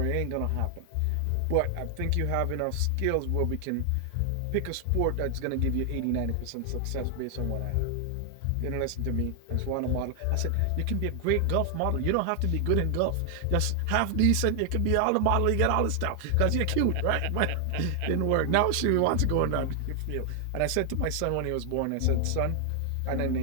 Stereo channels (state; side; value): different; both; correlation 0.00